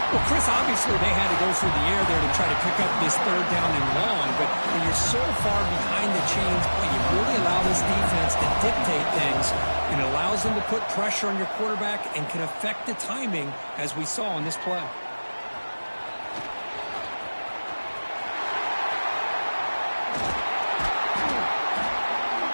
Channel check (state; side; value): inverted; both; correlation -1.00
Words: Well, Chris, obviously they had to go through the air there to try to pick up this 3rd down and long, but when you're so far behind the chains, boy, you really allow this defense to dictate things, and it allows them to put pressure on your quarterback and can affect the timing, as we saw on this play.